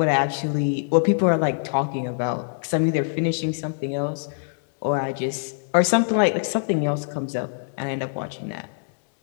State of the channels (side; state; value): right; silent; digital silence